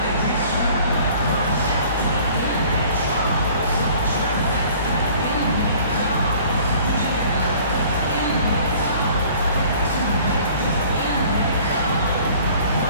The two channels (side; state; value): both; inverted; correlation -0.52